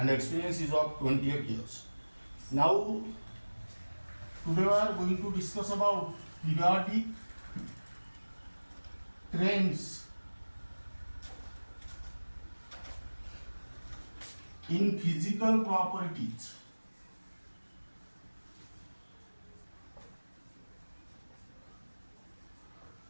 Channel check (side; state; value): both; inverted; correlation -1.00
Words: experience is of 28 years. Now, today we are going to discuss about periodic trends in physical properties.